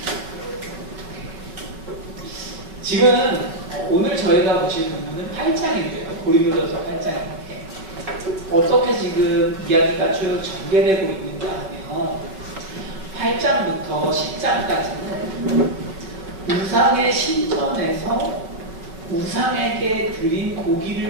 지금 오늘 저희가 보실 부분은 8장인데요. 고린도전서 8장인데 어떻게 지금 이야기가 쭉 전개되고 있는가 하면 8장부터 10장까지는 우상의 신전에서 우상에게 드린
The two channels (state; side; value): late; left; 5.3 ms